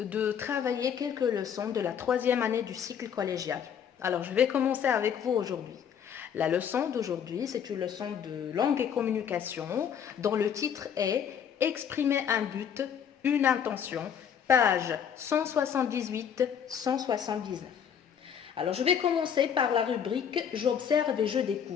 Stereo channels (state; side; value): quieter; right; 8.1 dB